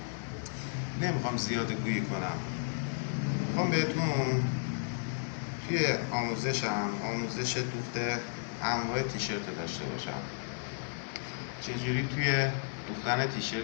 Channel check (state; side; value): silent; right; digital silence